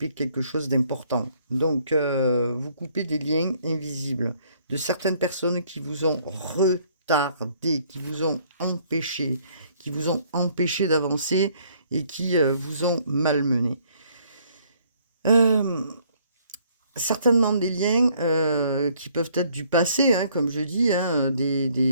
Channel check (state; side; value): inverted; both; correlation -0.64